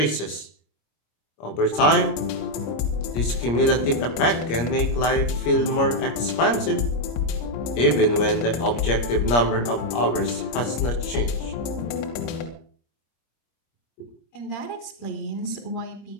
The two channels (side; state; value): right; late; 25 ms